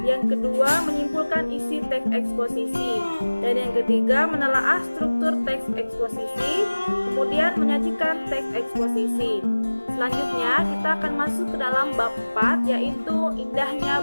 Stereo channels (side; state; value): both; inverted; correlation -1.00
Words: Yang kedua, menyimpulkan isi teks eksposisi. Dan yang ketiga, menelaah struktur teks eksposisi. Kemudian menyajikan teks eksposisi. Selanjutnya, kita akan masuk ke dalam bab 4, yaitu indahnya